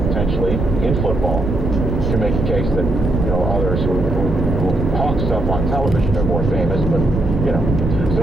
in football. To make a case that, others who hawk stuff on television are more famous, but,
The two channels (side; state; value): right; noise; rumble, 2 dB below the sound